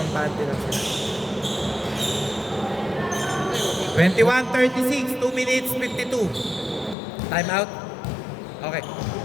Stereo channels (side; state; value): right; drops out; at 7.0 s